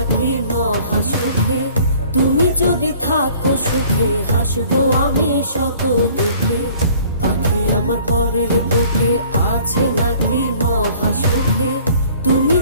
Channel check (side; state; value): both; inverted; correlation -0.53